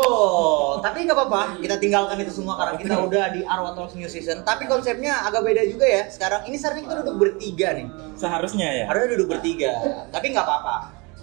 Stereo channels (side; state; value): left; quieter; 28.4 dB